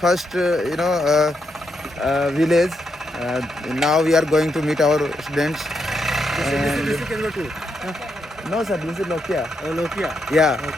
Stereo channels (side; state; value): both; normal; correlation 0.81